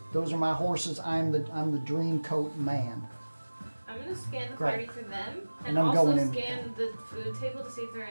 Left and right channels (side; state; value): both; inverted; correlation -1.00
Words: those are my horses. I'm the Dream Coat Man. I'm gonna scan the Great. party for them, And and I'm also going in. scan the food table to see if there are